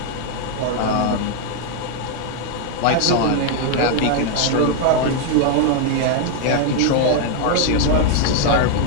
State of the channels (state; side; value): different; both; correlation 0.00